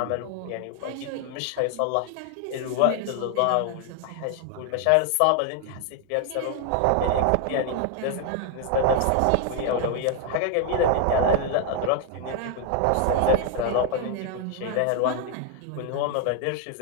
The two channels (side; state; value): both; different; correlation 0.00